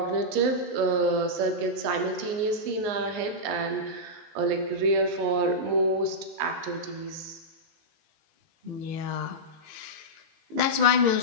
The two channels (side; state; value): left; late; 19 ms